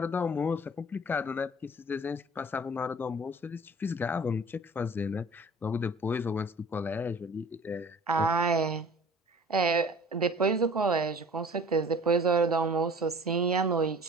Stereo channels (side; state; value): both; normal; correlation 0.47